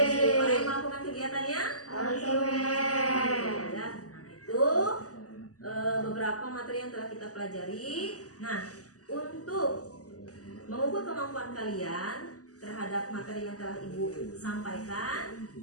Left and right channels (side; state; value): right; late; 0.67 ms